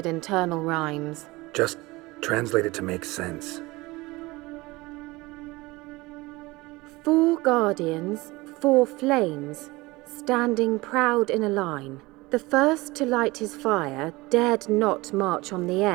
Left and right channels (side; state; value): left; quieter; 21.7 dB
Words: internal rhymes. Just translate it to make sense. 4 guardians, 4 flames, standing proud in a line. The first to light his fire dared not march on the